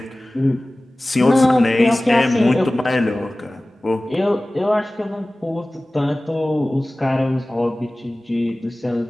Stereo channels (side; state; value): both; normal; correlation 0.98